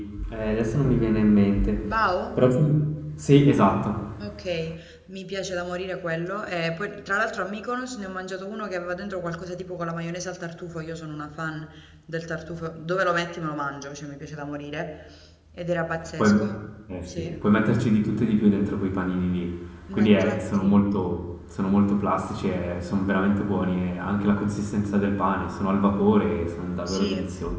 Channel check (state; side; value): identical; both; correlation 1.00